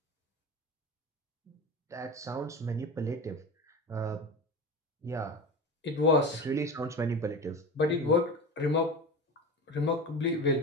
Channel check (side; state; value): both; normal; correlation 0.28